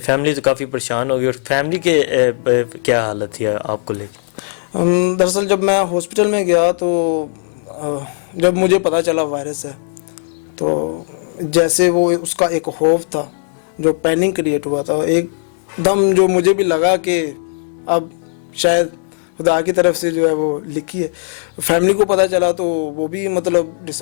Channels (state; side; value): silent; right; digital silence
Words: تو کافی پریشان ہوگی، اور فیملی کے کیا حالت تھی آپ کو لے کے؟ دراصل جب میں ہاسپٹل میں گیا تو جب مجھے پتہ چلا وائرس ہے تو جیسے وہ اس کا ایک خوف تھا، جو پینک کریٹ ہوا تھا، ایک دم جو مجھے بھی لگا کہ اب شاید خدا کی طرف سے جو ہے وہ لکھی ہے. فیملی کو پتہ چلا تو وہ بھی مطلب